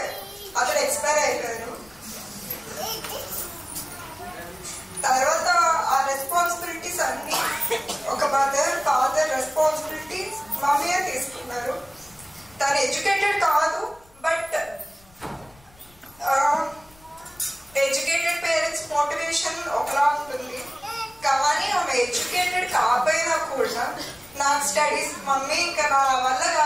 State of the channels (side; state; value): left; noise; rumble, 27 dB below the sound